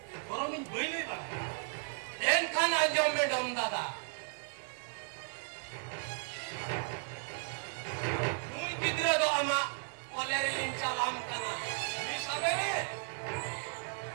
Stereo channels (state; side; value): silent; left; 54 dB below the other